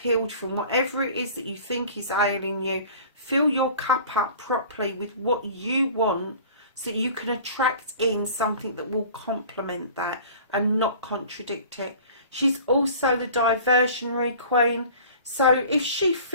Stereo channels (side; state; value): both; inverted; correlation -0.44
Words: from whatever it is that you think is ailing you. Fill your cup up properly with what you want, so that you can attract in something that will complement that and not contradict it. She's also the diversionary queen. So if she